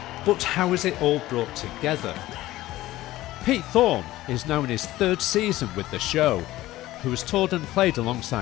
But how is it all brought together? Pete Thorn is now in his third season with the show, who has toured and played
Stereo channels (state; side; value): quieter; right; 16.2 dB